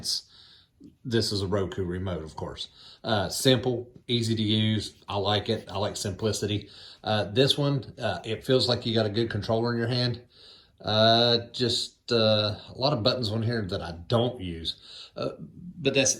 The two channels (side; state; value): both; identical; correlation 1.00